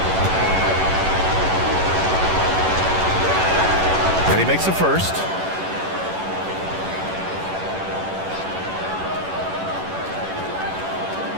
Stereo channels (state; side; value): late; left; 11 ms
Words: And he makes the first.